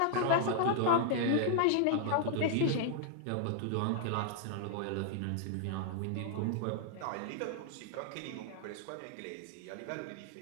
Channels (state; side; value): different; both; correlation -0.01